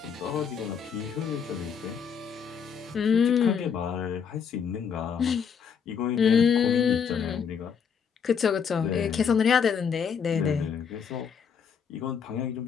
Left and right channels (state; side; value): quieter; right; 6.9 dB